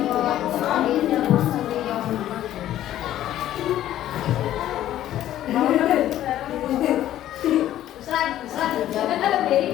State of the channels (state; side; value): quieter; right; 12.7 dB